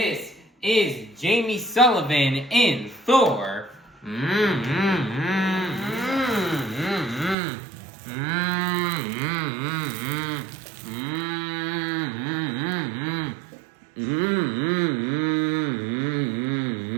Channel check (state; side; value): drops out; left; at 7.4 s